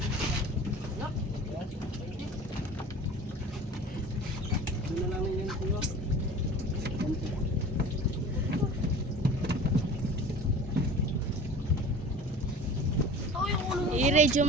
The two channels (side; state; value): both; normal; correlation 0.40